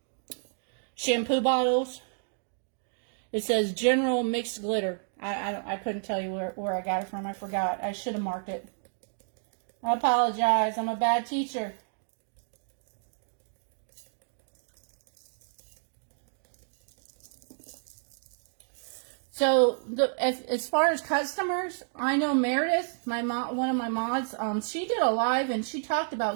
shampoo bottles. It says General Mixed Glitter. I couldn't tell you where I got it from. I forgot. I should have marked it. I apologize. I'm a bad teacher. So as far as customers, I know Meredith, one of my mods, she did a live and she talked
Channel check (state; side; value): silent; left; digital silence